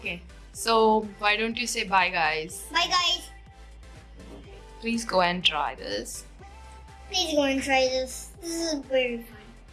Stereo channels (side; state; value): both; identical; correlation 1.00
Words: So, why don't you say bye, guys? Bye guys. Please go and try this. Please go and try this. This is very fun.